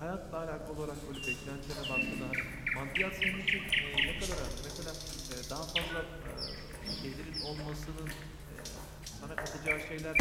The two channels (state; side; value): identical; both; correlation 1.00